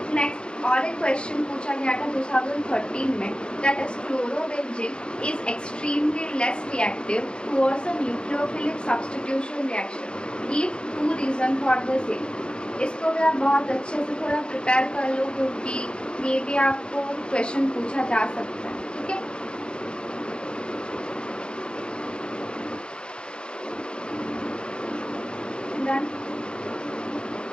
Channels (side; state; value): right; late; 0.052 ms